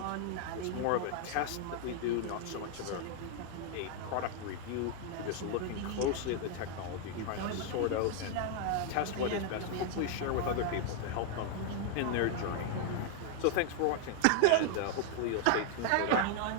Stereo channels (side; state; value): both; different; correlation 0.00